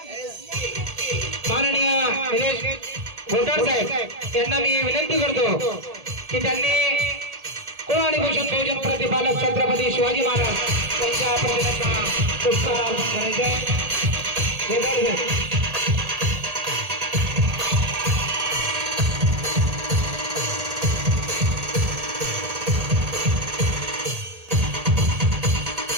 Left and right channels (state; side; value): late; left; 1.8 ms